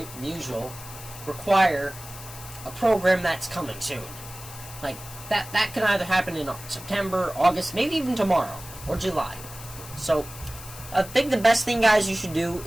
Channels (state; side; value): noise; left; hiss, 14 dB below the sound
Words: require a program that's coming soon. Like that can either happen in September, August, maybe even tomorrow or July. So I think the best thing, guys, you should do